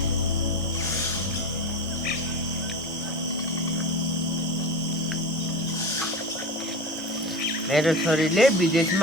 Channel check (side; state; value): both; normal; correlation 0.28